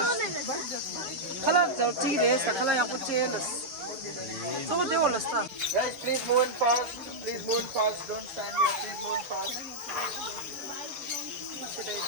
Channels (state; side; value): late; left; 6.8 ms